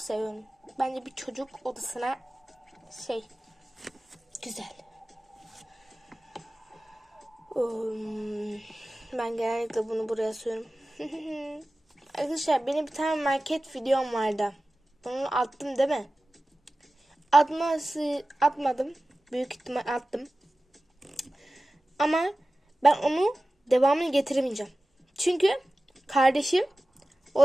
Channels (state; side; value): normal; both; correlation 0.96